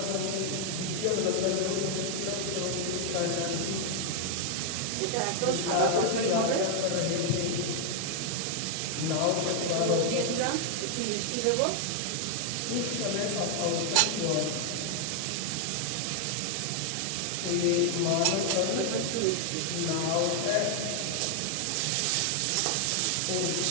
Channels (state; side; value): different; both; correlation 0.00